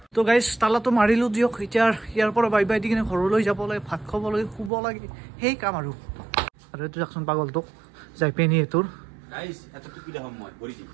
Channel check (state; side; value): drops out; left; at 4.7 s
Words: তো গাইছ তালাটো মাৰিলোঁ দিয়ক এতিয়া ইয়াৰ পৰা বাই দি কিনে ঘৰলৈ যাব লাগে ভাত খাব লাগে শুব লাগে সেই কাম আৰু এইটো যাকচোন পাগলটোক যাই পেনি এইটোৰ